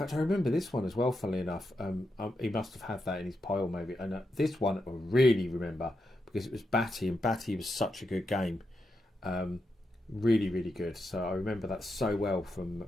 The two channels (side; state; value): both; normal; correlation 0.85